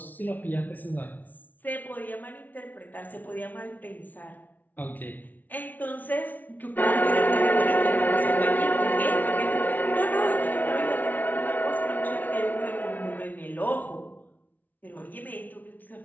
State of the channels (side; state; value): right; late; 0.080 ms